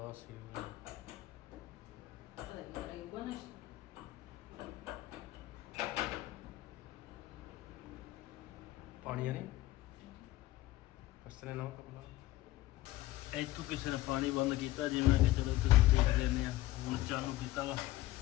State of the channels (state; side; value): quieter; right; 16.6 dB